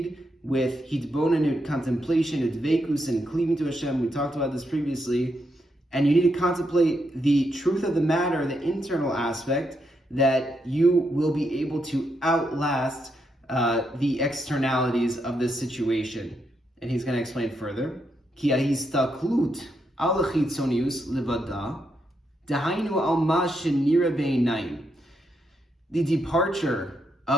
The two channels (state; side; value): normal; both; correlation 0.80